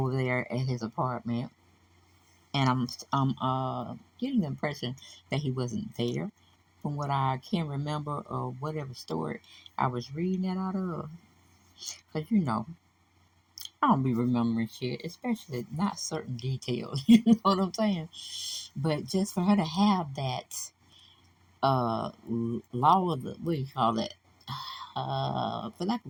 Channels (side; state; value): both; identical; correlation 1.00